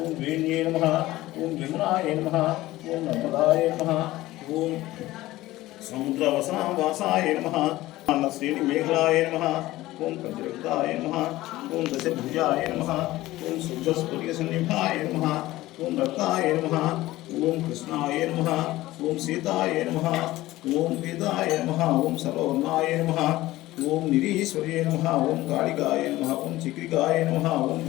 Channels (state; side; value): quieter; right; 17.1 dB